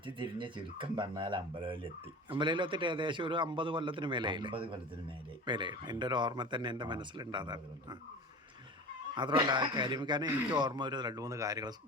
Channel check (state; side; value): normal; both; correlation 0.35